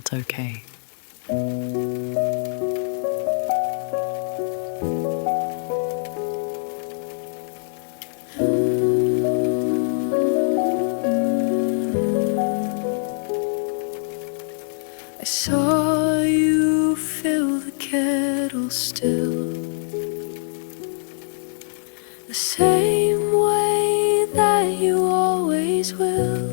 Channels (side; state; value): right; silent; digital silence